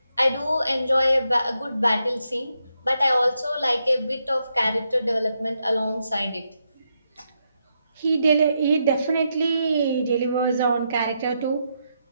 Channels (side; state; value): both; inverted; correlation -0.82